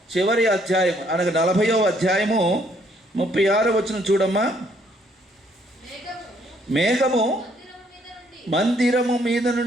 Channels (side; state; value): both; normal; correlation 0.67